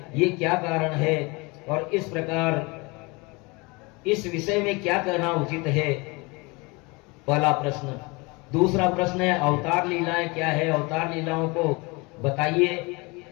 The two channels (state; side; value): quieter; right; 26.5 dB